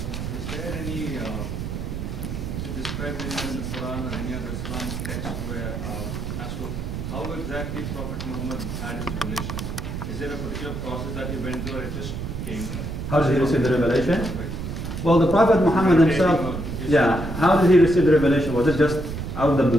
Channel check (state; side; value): noise; right; rumble, 5 dB below the sound